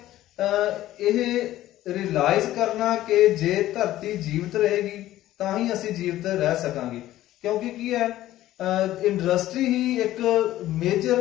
ਇਹ ਰਿਅਲਾਈਜ਼ ਕਰਨਾ ਕਿ ਜੇ ਧਰਤੀ ਜੀਵਤ ਰਹੇਗੀ ਤਾਂ ਹੀ ਅਸੀਂ ਜੀਵਤ ਰਹਿ ਸਕਾਂਗੇ. ਕਿਉਂਕਿ ਕੀ ਹੈ, ਇੰਡਸਟਰੀ ਹੀ ਇੱਕ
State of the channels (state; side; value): quieter; right; 14.4 dB